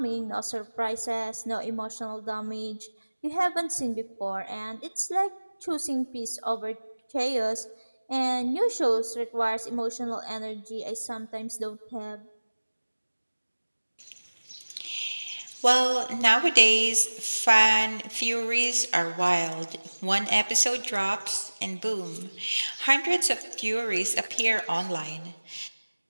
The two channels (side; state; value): both; inverted; correlation -1.00